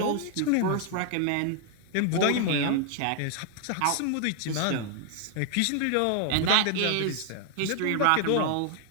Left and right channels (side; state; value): both; different; correlation 0.00